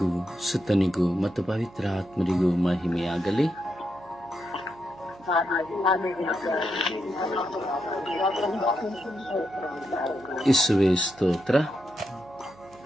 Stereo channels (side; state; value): right; noise; hum, 24 dB below the sound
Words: ಸುತನಿಗೂ ಮತ್ತು ಪವಿತ್ರ ಆತ್ಮರಿಗೂ ಮಹಿಮೆಯಾಗಲಿ. ಯೇಸುವೇ ಸ್ತೋತ್ರ,